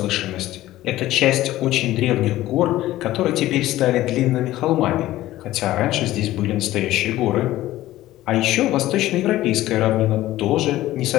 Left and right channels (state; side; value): quieter; right; 15.4 dB